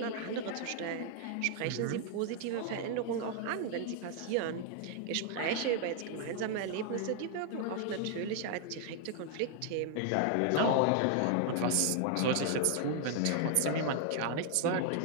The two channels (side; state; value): both; different; correlation 0.00